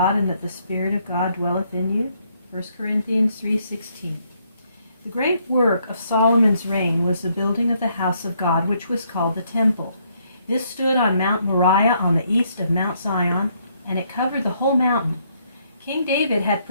and that the Spirit of God dwelleth in you? 1 Corinthians 3:16. The great work of Solomon's reign was the building of the house of God, which was called the temple. This stood on Mount Moriah on the east of Mount Zion, and it covered the whole mountain. King David had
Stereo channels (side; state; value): both; inverted; correlation -0.71